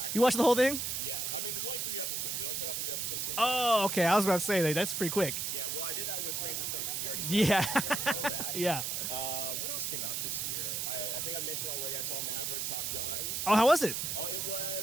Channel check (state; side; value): noise; right; hiss, 1 dB below the sound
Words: You watched the whole thing? Yeah. I mean, there's only 3 episodes. Oh, okay. I was about to say, that's pretty quick. Yeah, well, I did that with Stranger Things. We already Yeah. saw that. Yeah. What else came out this year? I think I mentioned already I saw Maverick Top Gun. Oh, how was it? Oh, it